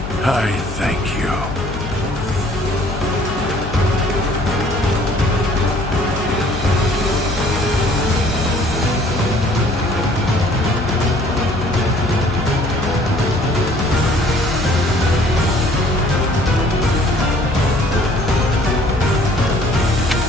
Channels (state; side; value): noise; left; hum, 9 dB below the sound